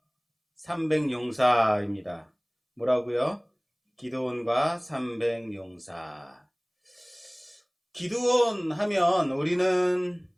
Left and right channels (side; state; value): both; identical; correlation 1.00